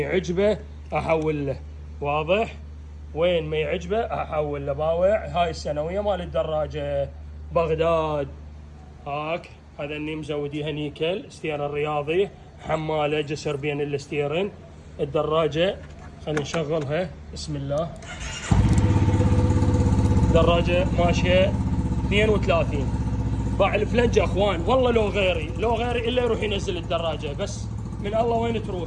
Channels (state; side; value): identical; both; correlation 1.00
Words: احول له، واضح؟ وين ما يعجبه احول له. باوع هاي السنويه مال الدراجه بغداد. هاك هذا اني مزوديها نيكل، ستير الرياضي، حماله جسر بين الستيرن. الدراجه خلينا نشغلها، بسم الله. دراجه ماشيه 32. باع الفلنجه اخوان، والله لو غيري الا يروح ينزل الدراجه، بس من الله وين